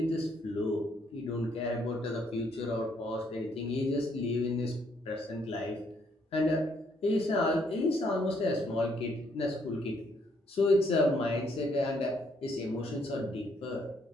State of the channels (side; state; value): both; normal; correlation 0.70